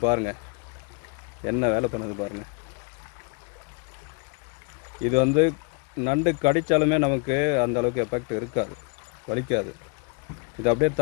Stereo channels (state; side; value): quieter; right; 34.2 dB